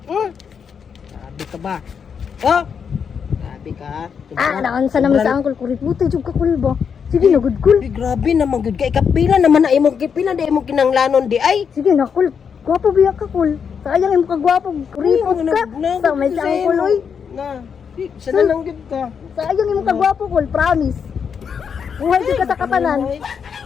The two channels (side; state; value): right; quieter; 6.8 dB